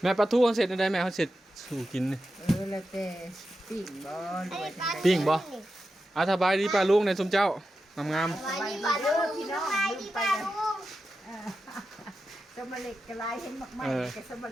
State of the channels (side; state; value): both; normal; correlation 0.90